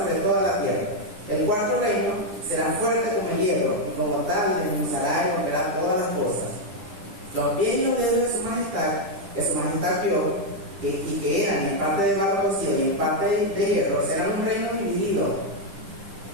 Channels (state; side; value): late; left; 10 ms